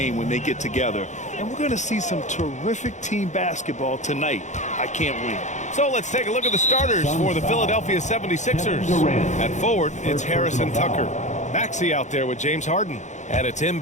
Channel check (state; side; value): late; right; 0.35 ms